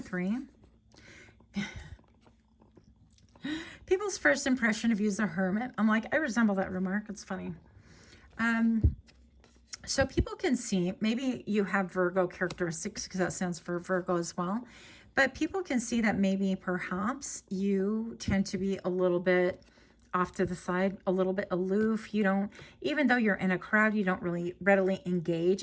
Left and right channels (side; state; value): both; identical; correlation 1.00